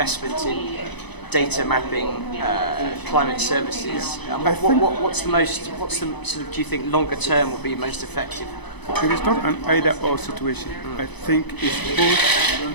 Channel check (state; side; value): late; right; 0.99 ms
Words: in data mapping, climate services? What's the sort of, do you think longer term will be most effective? It is not an either-or situation. I think it's both